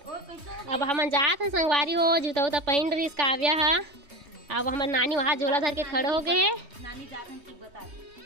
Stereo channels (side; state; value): left; late; 3.2 ms